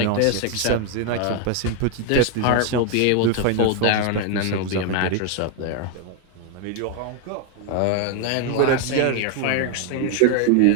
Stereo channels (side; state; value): both; different; correlation 0.01